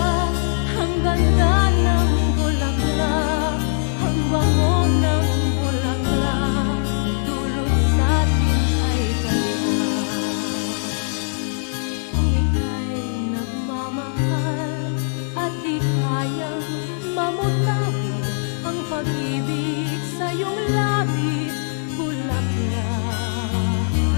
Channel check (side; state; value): right; silent; digital silence